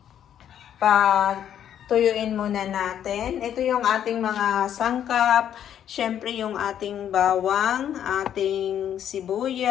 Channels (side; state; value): right; quieter; 9.9 dB